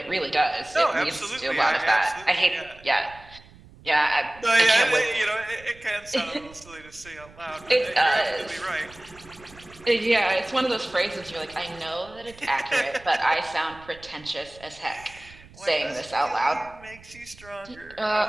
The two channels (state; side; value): noise; right; rumble, 22 dB below the sound